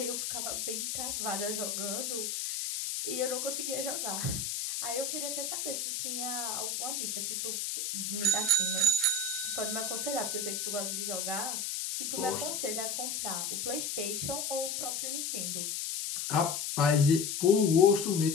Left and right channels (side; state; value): left; noise; hiss, 2 dB below the sound